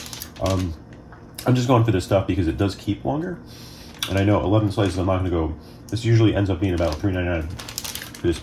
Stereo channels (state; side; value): identical; both; correlation 1.00